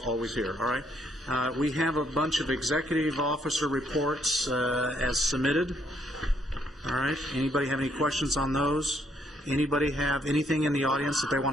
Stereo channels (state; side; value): normal; both; correlation 0.71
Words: always here, all right? We have a bunch of executive officer reports as submitted. All right, anybody have any questions on those? Anybody have anything in the audience that they